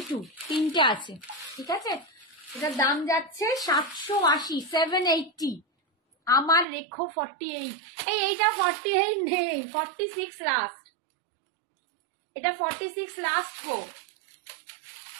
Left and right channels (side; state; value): left; drops out; at 6.7 s